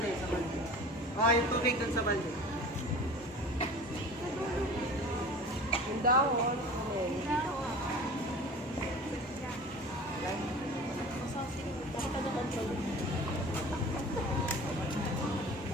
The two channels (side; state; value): both; normal; correlation 0.39